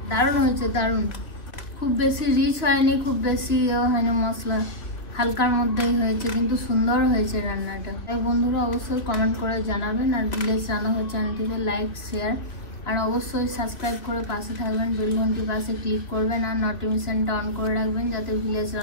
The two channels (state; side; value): late; right; 2.8 ms